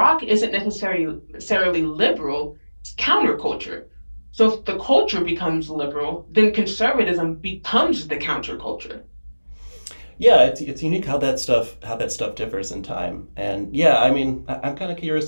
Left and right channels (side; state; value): both; inverted; correlation -1.00